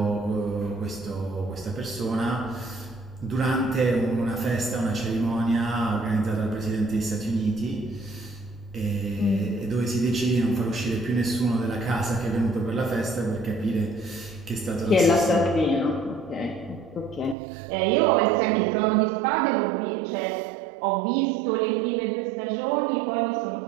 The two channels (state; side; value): drops out; left; at 17.4 s